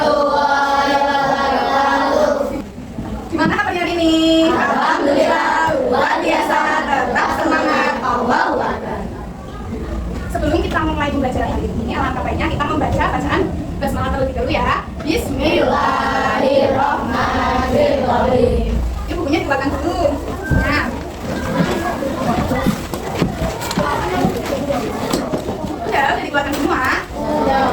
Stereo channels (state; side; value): identical; both; correlation 1.00